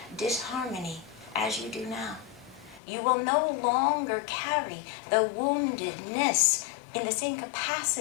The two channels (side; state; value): right; drops out; at 2.8 s